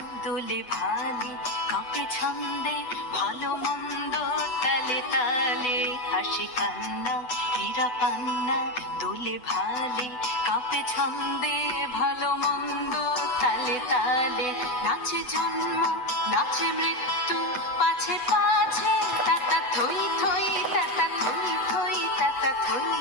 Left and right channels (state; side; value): late; right; 8.0 ms